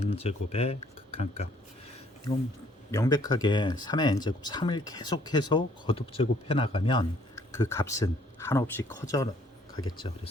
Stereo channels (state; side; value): normal; both; correlation 0.63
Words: 제곱의 극한값. 이건 명백하게 3의 n 제곱 3을 계속해서 거듭 제곱해 나가면 그 값은 한없이 커져 가겠죠.